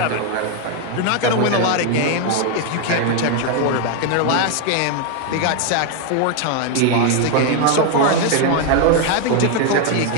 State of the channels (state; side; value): different; both; correlation 0.01